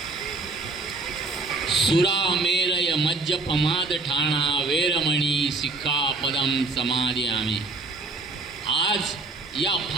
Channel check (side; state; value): left; quieter; 3.5 dB